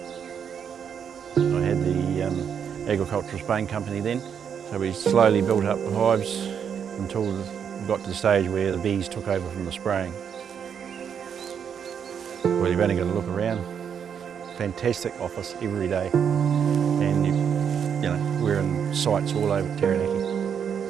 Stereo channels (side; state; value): left; quieter; 7.7 dB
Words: I had the agricultural spraying company then, so we slowly built up the hives until we got to the stage where the bees took over from the spraying. Well, you've only got to look around. Fantastic office every day, and you know, we're in sites all over Taranaki.